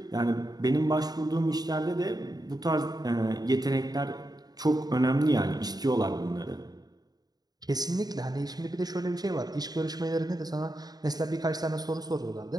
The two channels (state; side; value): late; left; 0.19 ms